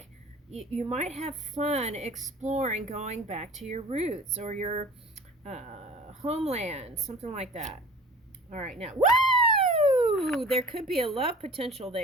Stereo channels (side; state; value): both; normal; correlation 0.42